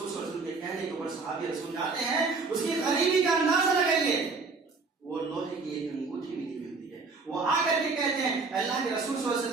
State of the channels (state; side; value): quieter; left; 4.2 dB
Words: صلی اللہ علیہ وسلم کے کہنے کے اوپر صحابی رسول جاتے ہیں، اس کی غریبی کا اندازہ لگائیے، وہ لوہے کی ایک انگوٹھی بھی نہیں ملتی ہے۔ وہ آ کر کے کہتے ہیں اللہ کے رسول صلی اللہ علیہ